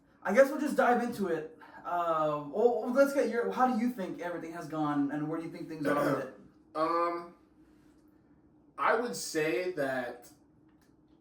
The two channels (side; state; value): both; identical; correlation 1.00